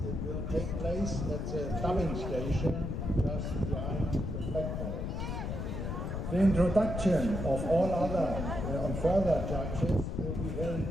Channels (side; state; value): left; noise; rumble, 3 dB below the sound